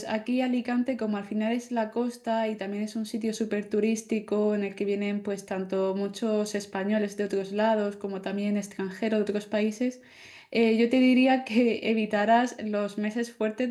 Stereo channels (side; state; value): both; identical; correlation 1.00